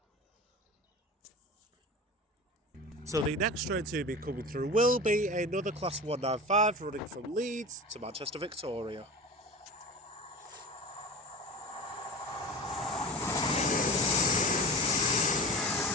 So the next train to be coming through will be another Class 195 running from Leeds to Manchester Victoria.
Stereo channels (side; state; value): both; normal; correlation 0.32